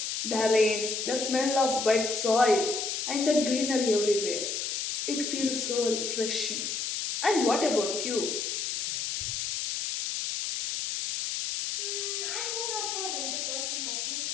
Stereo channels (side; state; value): left; noise; hiss, 2 dB below the sound